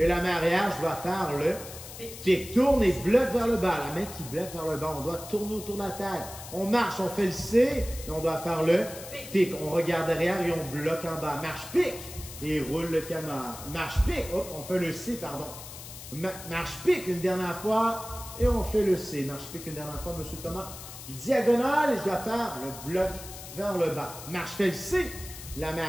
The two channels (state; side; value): noise; left; hiss, 13 dB below the sound